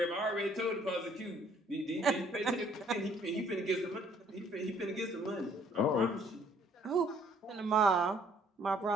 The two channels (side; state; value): both; normal; correlation 0.62